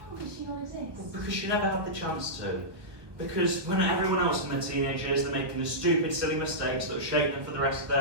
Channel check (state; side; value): late; left; 1.2 ms